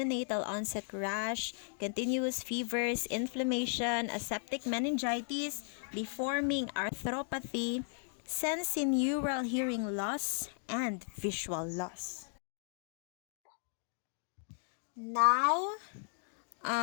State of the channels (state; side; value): silent; right; 54 dB below the other